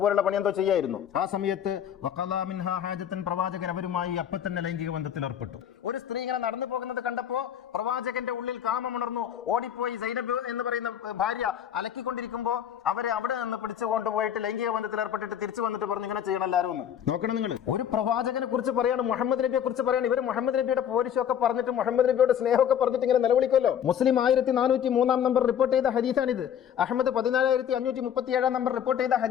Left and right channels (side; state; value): right; quieter; 9.3 dB